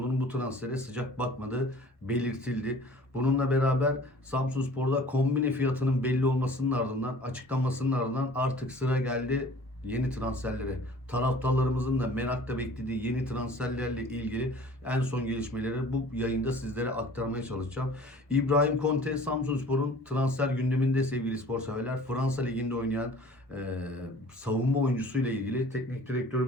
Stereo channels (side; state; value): both; normal; correlation 0.48